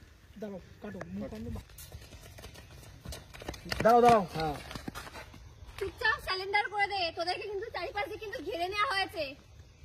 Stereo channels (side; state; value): both; identical; correlation 1.00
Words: দাঁড়াও, কাটো দাঁড়াও। হ্যাঁ চুপচাপ স্যালেন্ডার করে দে, তোদেরকে কিন্তু চারপাশ দিয়ে কিন্তু ঘিরে নেওয়া হয়েছে।